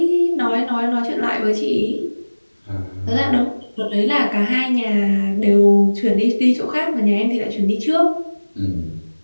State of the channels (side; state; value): both; inverted; correlation -1.00